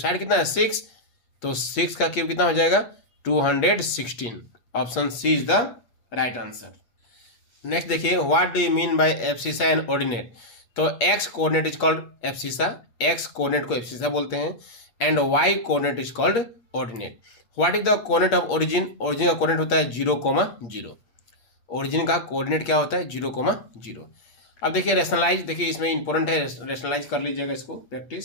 कितना है 6, तो 6 का क्यूब कितना हो जाएगा 216, option C is the right answer. Next देखिए, what do you mean by abscissa and ordinate, तो X coordinate is called abscissa, X coordinate को एब्सिसा बोलते हैं, and Y coordinate is called ordinate. What is the coordinate of origin, origin का coordinate होता है 0,0, origin का coordinate क्या होता है 0,0। अब देखिए रेशनलाइज, देखिए इसमें इंपॉर्टेंट है, रेशनलाइज कर लीजिएगा इसको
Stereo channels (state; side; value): late; right; 8.5 ms